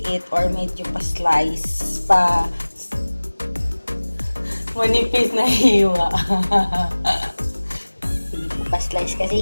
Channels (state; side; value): inverted; both; correlation -1.00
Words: or medyo pa-slice, manipis na hiwa. Hindi po pa-slice kasi